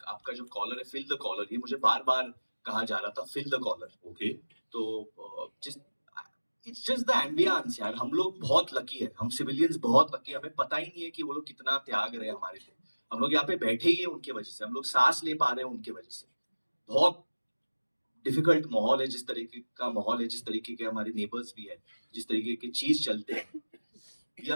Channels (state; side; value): inverted; both; correlation -1.00